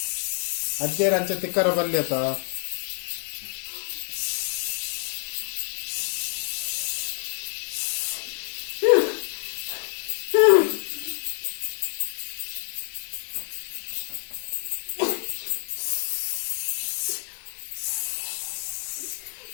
ಅಜ್ಜೇರ ಅಂಚೆ ತಿಕ್ಕರ ಬಲ್ಲಿ ಅತ್ತ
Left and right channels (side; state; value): right; silent; 56 dB below the other